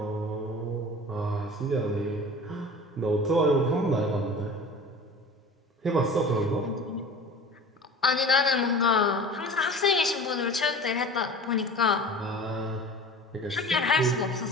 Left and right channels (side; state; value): both; normal; correlation 0.39